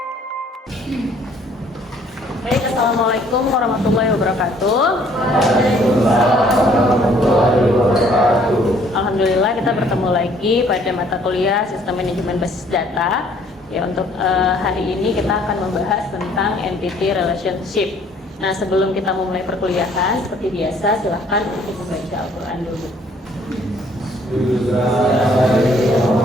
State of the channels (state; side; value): normal; both; correlation 0.60